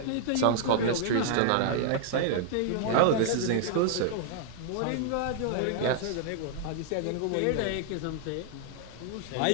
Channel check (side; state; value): both; different; correlation 0.00